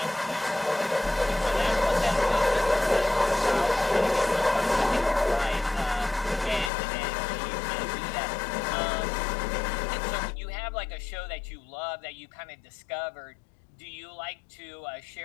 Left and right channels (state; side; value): drops out; right; at 6.7 s